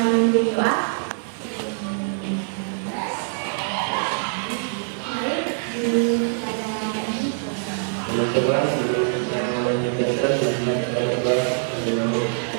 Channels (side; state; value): left; silent; digital silence